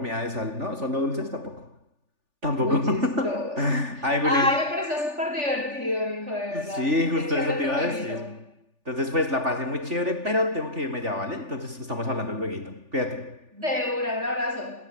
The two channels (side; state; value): left; late; 3.4 ms